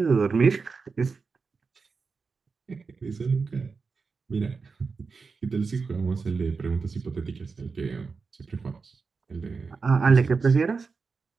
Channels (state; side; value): quieter; left; 4.8 dB